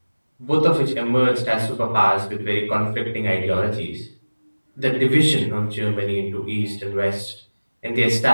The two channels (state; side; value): inverted; both; correlation -1.00